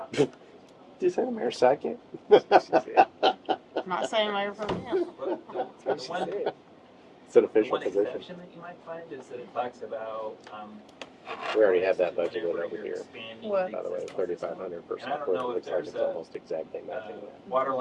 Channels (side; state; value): both; identical; correlation 1.00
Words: Did you say the mayor's sidekick? I'm not saying mayor pro tem. But the one, It's an the official one position. exception that you might find is that it talks about, We already have that budgeted whenever over you're here. expanding What? By the way, existing 3,500 for And I don't software. It know if looks like there's it's a- almost exactly matching that. water